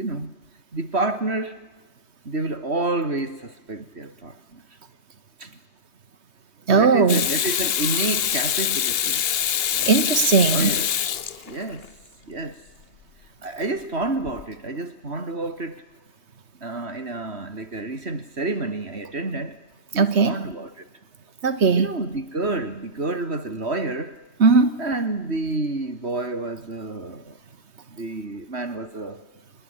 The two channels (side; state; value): left; late; 2.8 ms